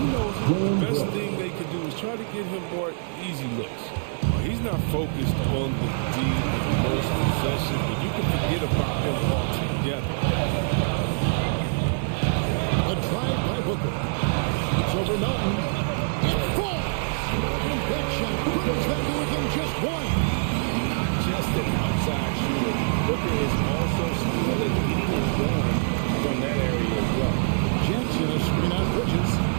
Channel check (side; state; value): left; silent; digital silence